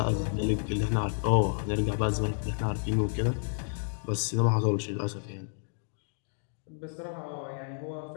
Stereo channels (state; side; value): silent; right; digital silence